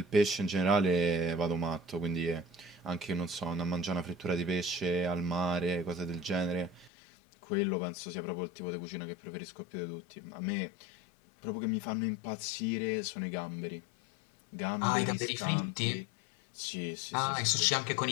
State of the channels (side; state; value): right; drops out; at 6.9 s